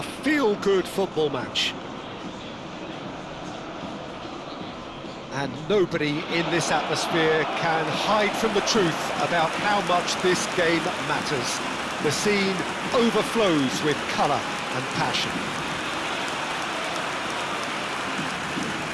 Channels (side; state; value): both; identical; correlation 1.00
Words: football match. And nobody in this atmosphere can hide from the truth about how much this game matters. The scene overflows with colour and passion.